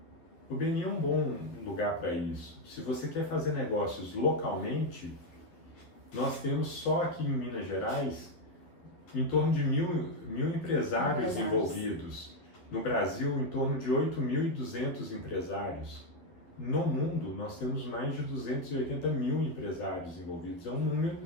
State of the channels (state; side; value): late; right; 11 ms